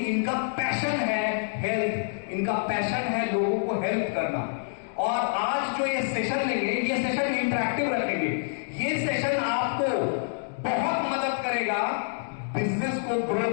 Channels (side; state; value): right; silent; 59 dB below the other